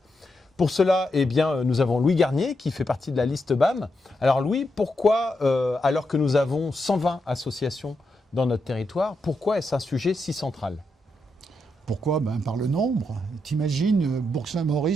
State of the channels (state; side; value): normal; both; correlation 0.83